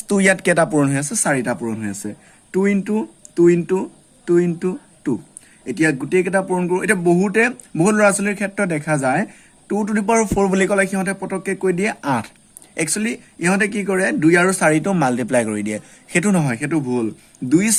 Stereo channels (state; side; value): identical; both; correlation 1.00